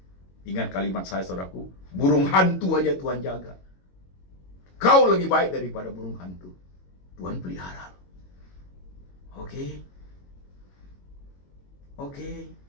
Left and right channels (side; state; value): right; late; 22 ms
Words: Ingat kalimat saya, saudaraku. Burung hantu aja Tuhan jaga. Kau lebih baik daripada burung hantu. Tuhan pelihara. Oke? Oke.